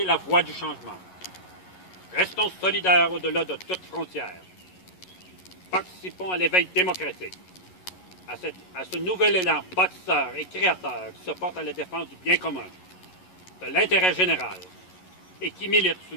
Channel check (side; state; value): right; late; 11 ms